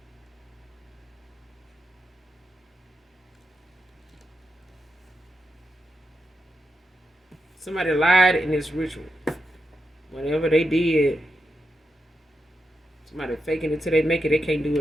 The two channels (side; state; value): both; normal; correlation 0.87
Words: Somebody lied in this ritual. Whatever they did, somebody faking it till they make it, they can't do